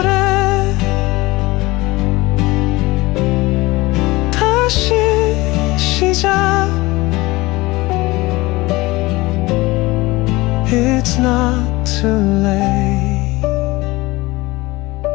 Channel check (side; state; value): right; quieter; 21.0 dB